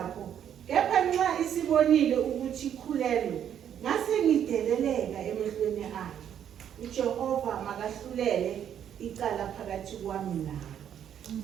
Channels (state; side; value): quieter; left; 9.4 dB